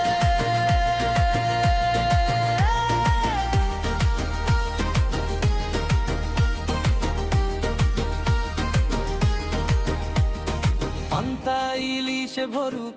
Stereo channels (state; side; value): identical; both; correlation 1.00